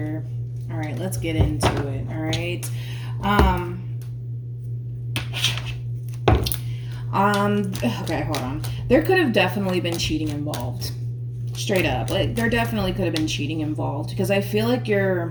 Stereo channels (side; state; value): both; identical; correlation 1.00